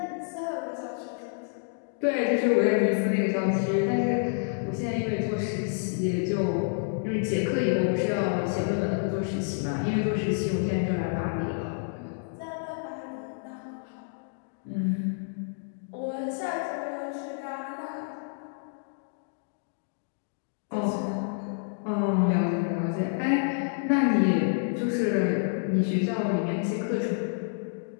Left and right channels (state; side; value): silent; right; digital silence